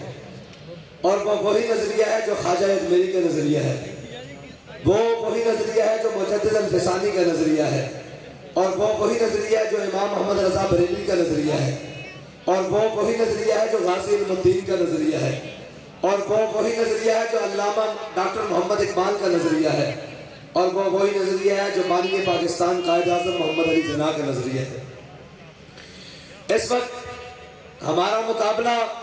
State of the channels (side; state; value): both; identical; correlation 1.00